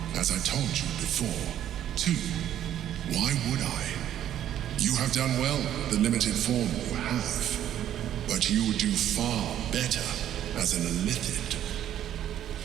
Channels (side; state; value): left; quieter; 11.1 dB